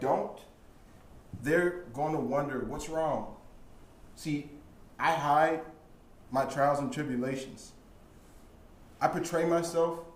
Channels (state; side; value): identical; both; correlation 1.00